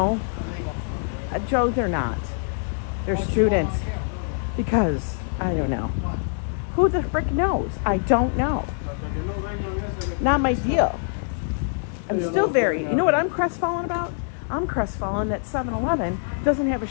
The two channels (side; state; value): right; silent; digital silence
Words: Joe, they're not. They're students. Because, I don't know. Who the frick knows? I don't know. Not my deal. I'm still very, you know what I'm crestfallen about? I'm crestfallen that 7-Eleven doesn't have a